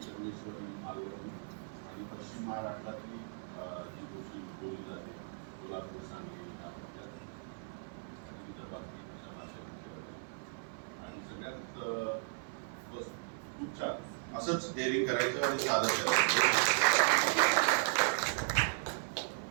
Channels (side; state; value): left; silent; 53 dB below the other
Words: संगमेश्वरी, मालवणी आणि पश्चिम महाराष्ट्रातली जी गोष्टी बोलली जाते, कोल्हापूर, सांगली, आणि विदर्भातली अशा भाषा. आणि सगळ्यात बस खूप छान असंच डेअरिंग करायचं आणि सादर करायचं.